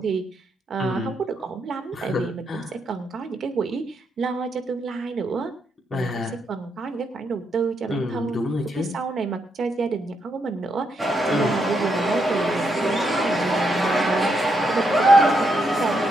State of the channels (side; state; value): both; normal; correlation 0.79